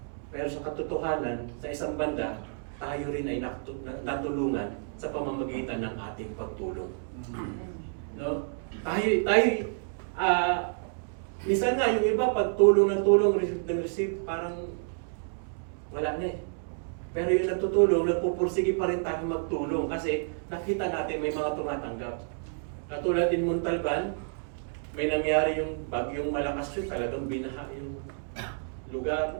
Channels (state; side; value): silent; left; digital silence